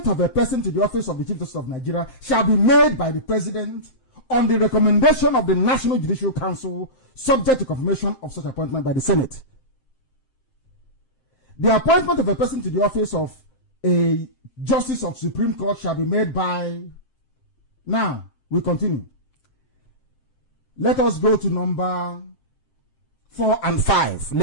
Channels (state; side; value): late; right; 7.6 ms